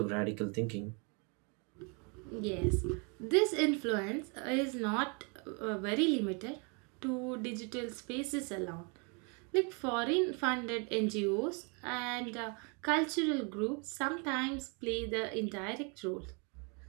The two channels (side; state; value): left; quieter; 34.2 dB